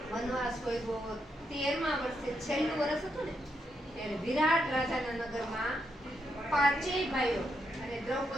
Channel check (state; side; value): normal; both; correlation 0.80